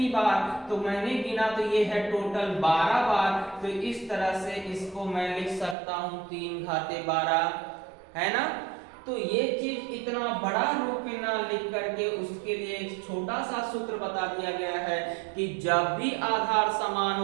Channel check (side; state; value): left; drops out; at 5.8 s